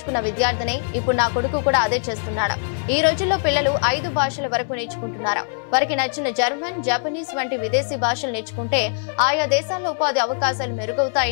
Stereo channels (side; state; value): right; silent; 64 dB below the other